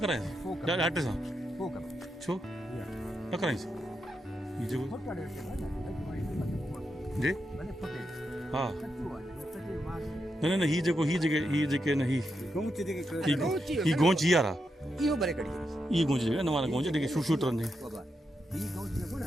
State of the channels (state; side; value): normal; both; correlation 0.85